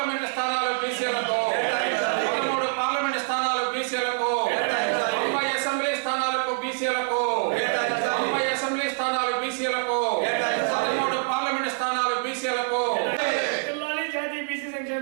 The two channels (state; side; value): silent; left; 61 dB below the other